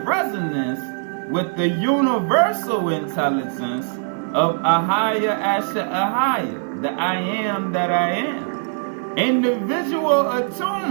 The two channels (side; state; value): left; silent; digital silence